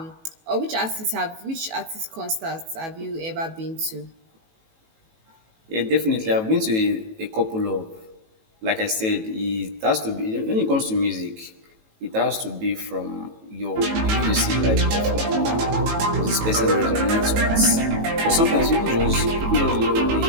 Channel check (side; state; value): left; late; 18 ms